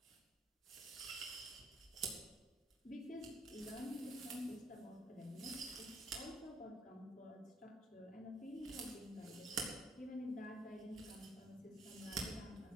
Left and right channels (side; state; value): both; normal; correlation 0.66